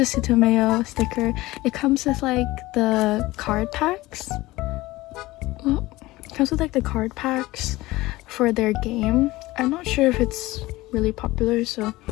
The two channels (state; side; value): quieter; right; 19.0 dB